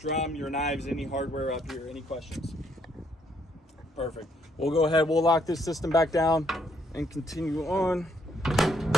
your knives, any hardware up here? Any questions? Perfect. We'll go ahead. We'll lock this system back down and continue on.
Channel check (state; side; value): normal; both; correlation 0.70